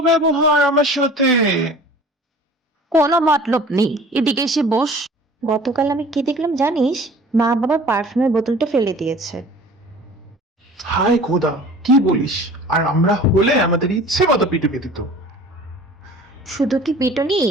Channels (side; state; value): both; normal; correlation 0.45